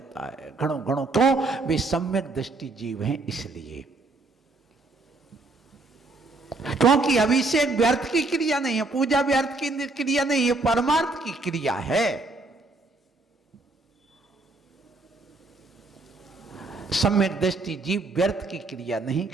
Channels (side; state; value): left; quieter; 3.2 dB